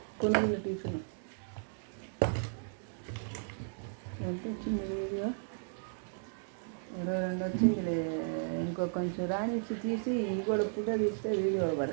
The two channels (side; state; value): left; silent; digital silence